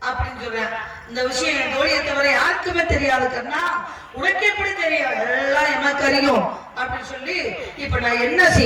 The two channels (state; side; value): identical; both; correlation 1.00